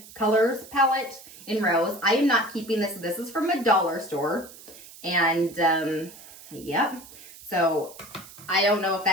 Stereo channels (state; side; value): noise; right; hiss, 18 dB below the sound